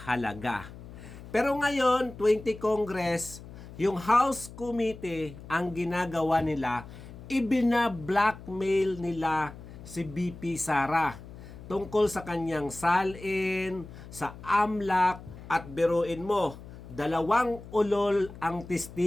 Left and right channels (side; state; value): left; noise; hum, 15 dB below the sound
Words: Pero ngayon, 20 Congress, yung House Committee, ang ginagawa nila, ibina-blackmail nila si BP Sara tungkol sa kanyang salin, sa AMLAC, at biruin mo, 2 ulol ang